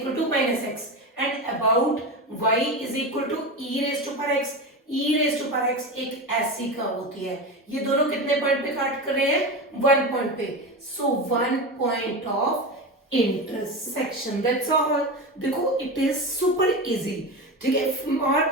to minus x, and about y is equal to e raise to power x. E raise to power x एक ऐसी कर्व होती है, ये दोनों कितने पॉइंट पे काट कर रहे हैं, 1 पॉइंट पे, सो 1 point of intersection, that's all. देखो इट इज सुपर इजी। ठीक है, और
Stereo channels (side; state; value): both; normal; correlation 0.22